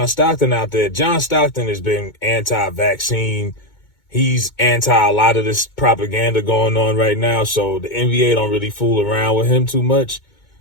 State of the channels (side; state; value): right; late; 2.2 ms